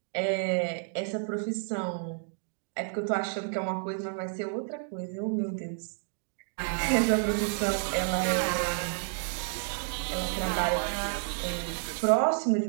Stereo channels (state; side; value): silent; left; 58 dB below the other